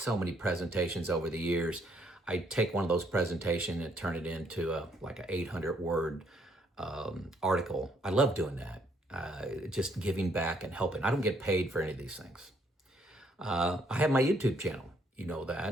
many presentations over the years. I take one of those presentations and turn it into like an 800-word article. I love doing that, just giving back and helping. I don't get paid for any of these things. I have my YouTube channel. You know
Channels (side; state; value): both; normal; correlation 0.70